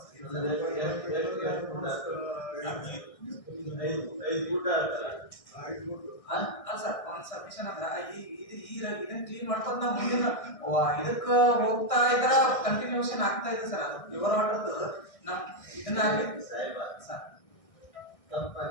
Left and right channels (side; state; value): right; late; 1.6 ms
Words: ಐದು ಫೂಟ್ ಆಗ್ತಲ್ಲ? ಅಲ್ಲ ಸರ್ ಒಂದು ಸಬ್ಮಿಷನ್ ಅಂದ್ರ ಇದನ್ನ ಕ್ಲೀನ್ ಮಾಡ್ಕೊಂಡ್ ನಾವು ಮುಂದಿನ ಇದಕ್ಕ ಹೋಗ್ತಾ ಇದ್ರ ಕಂಟಿನ್ಯೂಷನ್ ಆಗ್ತಾ ಇದೆ ಸರ್. ಅದು ಪ್ಯೂರ್ ವಾಟರ್ದು ನಮ್ ಇದನ್ನ ಆಗಿತ್ತು ಸಾಹೇಬ ಸರ್.